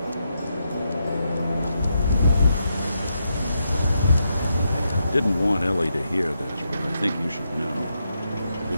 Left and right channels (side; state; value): both; inverted; correlation -0.82